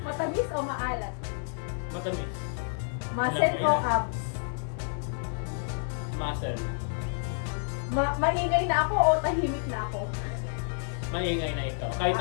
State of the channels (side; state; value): right; silent; 57 dB below the other